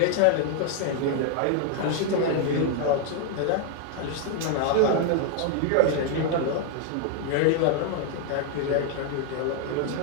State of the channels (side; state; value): both; different; correlation 0.00